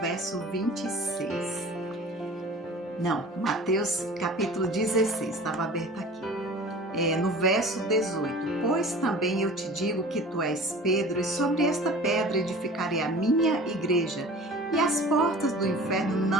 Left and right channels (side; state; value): both; normal; correlation 0.41